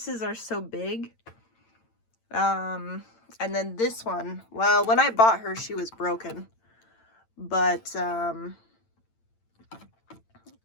are so big. And then this one, well, when I bought her, she was broken, but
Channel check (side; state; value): right; late; 8.9 ms